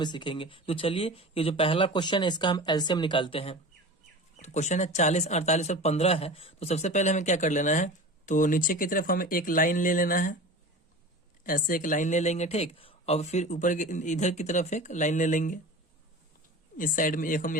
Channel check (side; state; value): both; normal; correlation 0.34